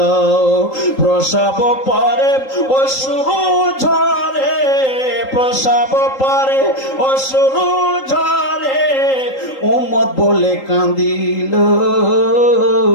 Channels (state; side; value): late; right; 3.8 ms